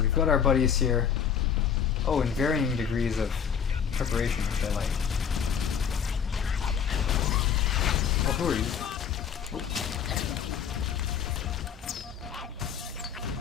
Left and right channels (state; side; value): quieter; right; 7.7 dB